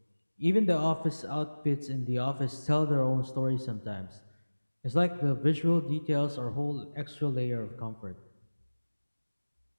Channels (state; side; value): inverted; both; correlation -1.00